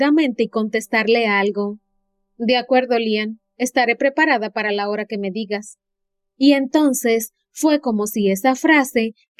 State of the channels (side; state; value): both; identical; correlation 1.00